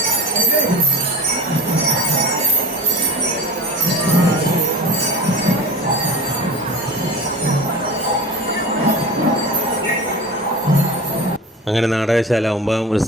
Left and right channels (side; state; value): both; normal; correlation 0.34